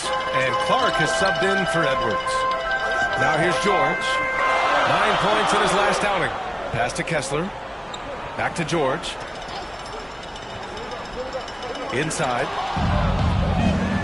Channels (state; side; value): identical; both; correlation 1.00